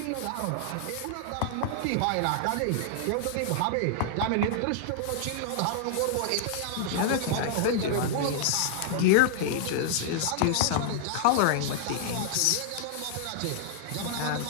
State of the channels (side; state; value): both; different; correlation -0.01